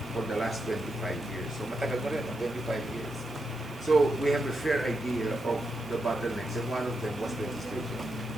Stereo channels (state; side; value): normal; both; correlation 0.84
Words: for the last 25 years. So matagal na rin, 25 years. So we have a fair idea of the bottlenecks, and one of them was legislation.